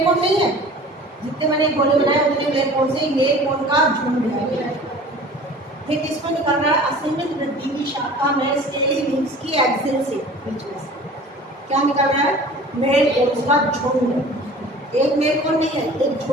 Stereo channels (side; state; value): both; normal; correlation 0.43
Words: कोन नहीं है, जितने मैंने गोले बनाए उतने मेल कोन से मेल कोन का झुंड है। ये किसमें निकल रहा है? असीमित वृद्धि की शाखा में स्केली लीव्स की एक्सिल से बीच में से क्या निकल रहा है? मेल कोन का झुंड। एक मेल कोन नहीं है, एक